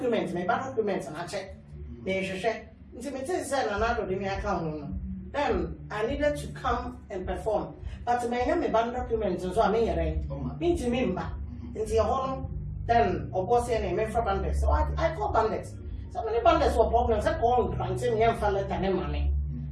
my documents and I check. They check. Until me say another they me account. Then I needed to come and perform. But my name band documents so I mean me to member. Until then, of course, I name for bandits. So I call bandits. So many bandits were problems. I call planting young fellow and money.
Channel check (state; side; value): identical; both; correlation 1.00